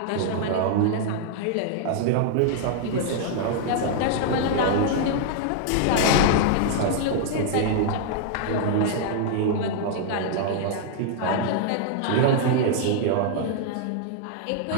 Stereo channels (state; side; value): different; both; correlation -0.01